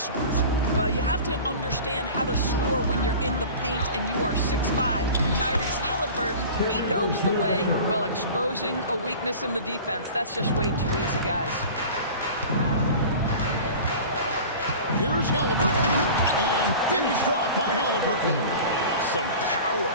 Well, you have to understand how to score when you're in the paint and you are 6'5". Tyrese Halliburton, he knows the way. Well, exposing a weakness in the defense, that's just way too easy, guys. Here's Halliburton, and finished off by Halliburton. Some power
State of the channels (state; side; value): inverted; both; correlation -0.38